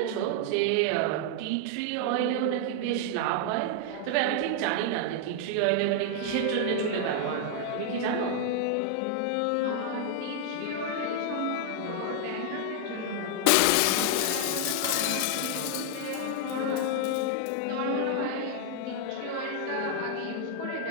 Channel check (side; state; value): both; different; correlation 0.00